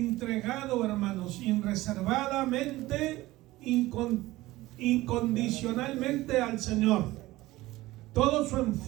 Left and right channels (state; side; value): quieter; left; 18.1 dB